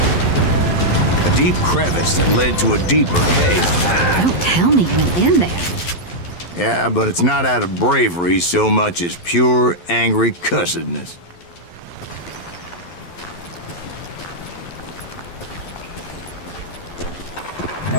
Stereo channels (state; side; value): late; right; 11 ms